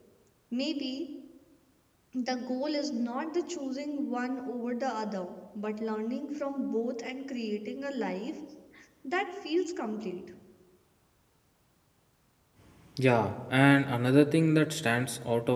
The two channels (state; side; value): identical; both; correlation 1.00